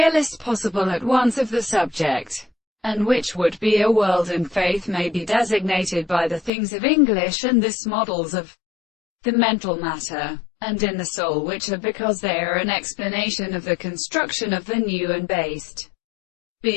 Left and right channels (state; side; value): drops out; right; at 6.5 s